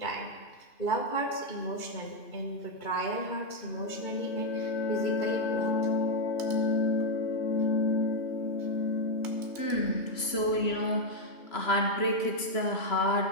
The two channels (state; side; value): late; right; 3.0 ms